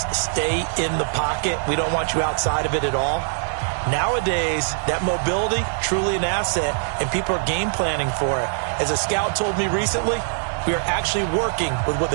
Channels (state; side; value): silent; left; digital silence